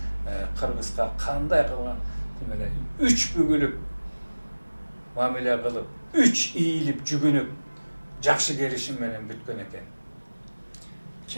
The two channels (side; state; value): both; inverted; correlation -1.00